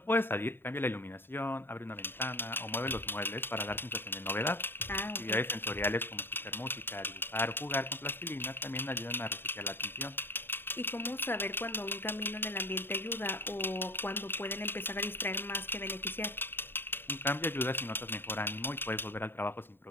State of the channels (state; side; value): late; right; 0.10 ms